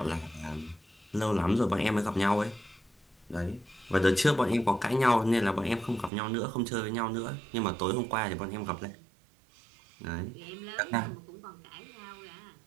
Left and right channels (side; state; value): left; drops out; at 6.1 s